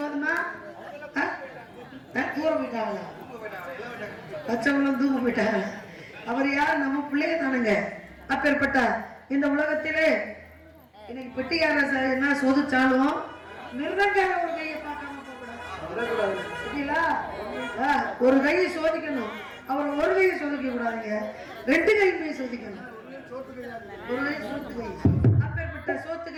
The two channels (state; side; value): identical; both; correlation 1.00